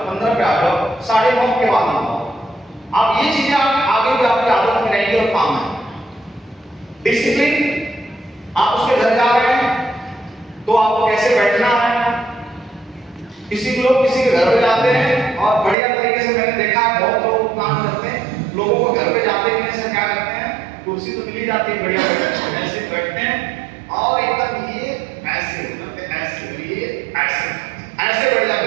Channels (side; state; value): left; drops out; at 15.8 s